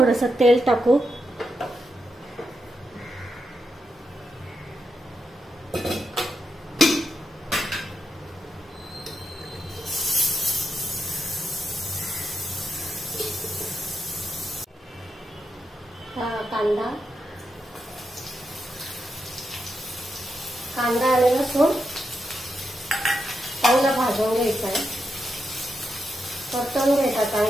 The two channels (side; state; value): both; normal; correlation 0.85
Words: तेल टाकू। कांदा आणि लसूण चांगला भाजून घ्यायचा आहे, परतून घ्यायचा